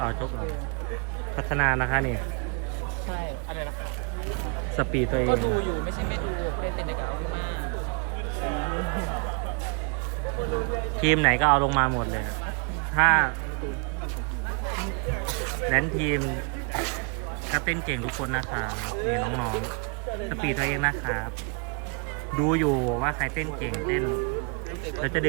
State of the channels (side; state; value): left; quieter; 35.7 dB